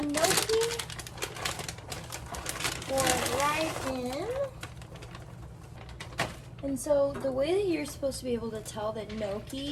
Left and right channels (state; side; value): identical; both; correlation 1.00